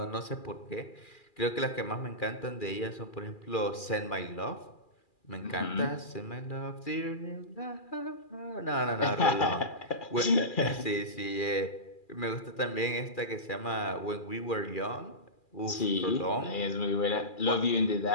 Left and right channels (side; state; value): right; late; 2.4 ms